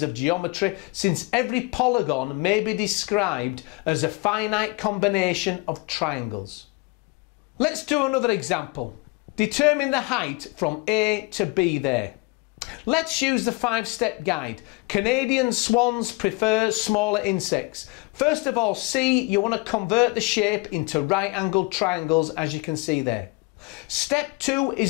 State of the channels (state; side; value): quieter; right; 26.6 dB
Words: of geometry since every polygon may be described as a finite combination of triangles. Let's do another example. determine the height from A to B there. Let's use the 5-step guide. Canadian swans prefer smaller insects. First of all, C, you want to convert the shape into right-angled triangles, as you can see there. Step 2